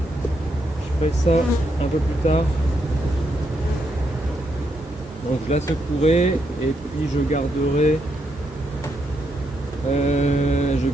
ferai ça un peu plus tard. Donc je la secouerai et puis je garderai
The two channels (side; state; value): both; normal; correlation 0.79